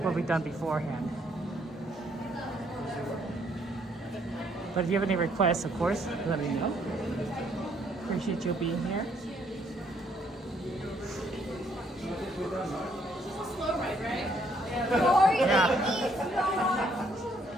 what we've done beforehand. But if you have any requests, of course, let me know. Appreciate you being here. Slow ride, right? Yeah.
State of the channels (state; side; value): normal; both; correlation 0.69